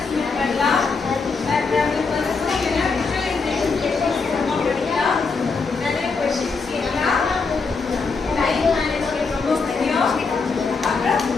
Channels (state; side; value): quieter; right; 4.6 dB